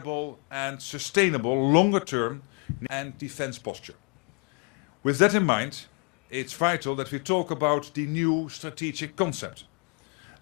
and sustainable longer-term and defense posture. With that in mind, it's vital that we talk about the new strategic concept,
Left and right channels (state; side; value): quieter; right; 34.7 dB